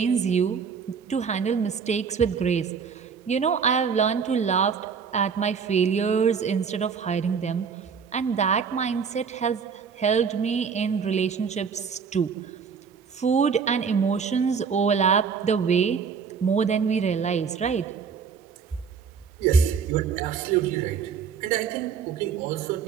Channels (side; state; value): left; quieter; 6.3 dB